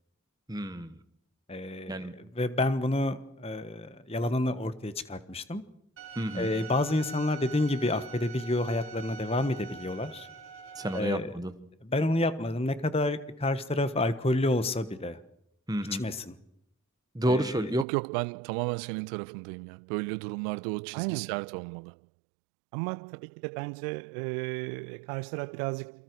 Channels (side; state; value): left; drops out; at 17.9 s